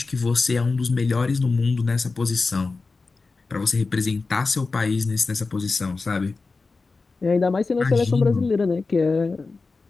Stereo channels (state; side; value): quieter; right; 4.0 dB